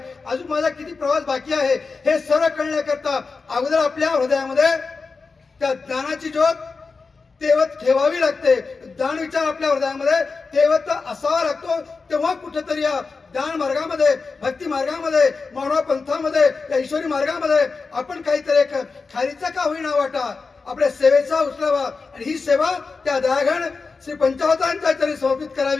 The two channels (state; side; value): quieter; right; 4.4 dB